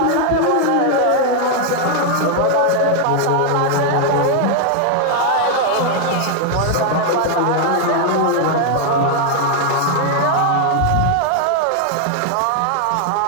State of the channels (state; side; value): different; both; correlation 0.00